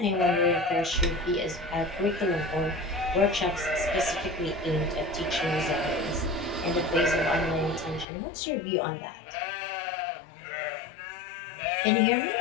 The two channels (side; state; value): right; drops out; at 8.1 s